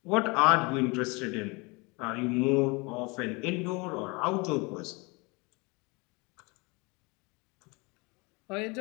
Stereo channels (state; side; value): quieter; right; 27.9 dB